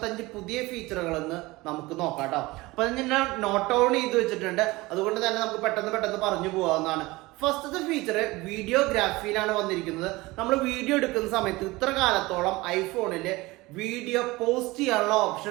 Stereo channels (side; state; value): left; quieter; 21.1 dB